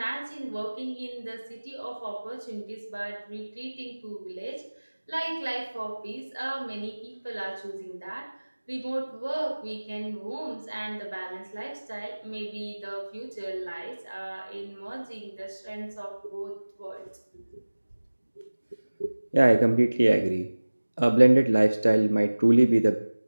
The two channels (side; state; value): both; inverted; correlation -1.00